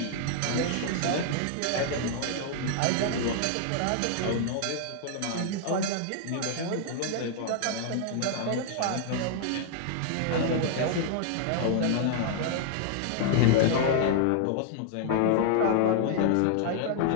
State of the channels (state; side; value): different; both; correlation -0.01